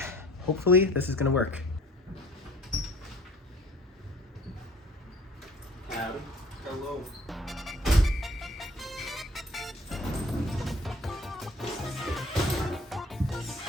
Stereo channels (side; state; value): both; normal; correlation 0.52